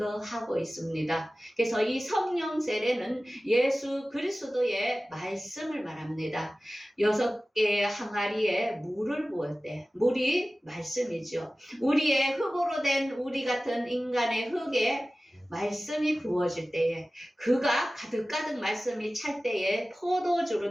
있습니다. 그래서 이 성령 세례는 예수 그리스도의 말씀을 말합니다. 6개의 항아리에 물을 부을 때 물이 말씀이죠. 우리의 흙으로 된 우리 같은 인간의 흙에 말씀이 부어질 때에 그가 가득가득 말씀이 찰 때에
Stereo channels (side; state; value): both; normal; correlation 0.96